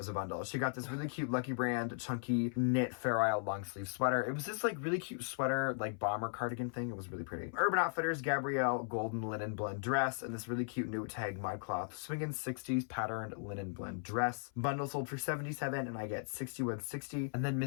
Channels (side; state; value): right; silent; 53 dB below the other